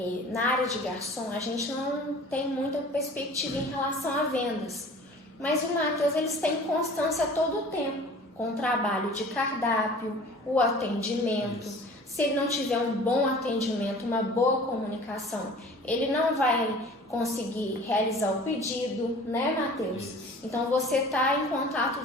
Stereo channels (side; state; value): both; normal; correlation 0.45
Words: na área de garçom a gente não tem muita perspectiva em relação a vendas. Mas o Matheus, eles têm constância todo o tempo, com o trabalho de cardápio, o atendimento. Isso. Se ele não tiver um bom atendimento, uma boa comunicação, ele não vai conseguir realizar o pedido, né, Matheus? Isso. Então você está em contato